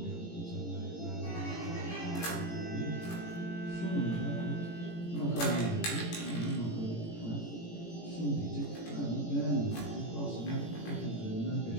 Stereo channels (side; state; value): right; late; 18 ms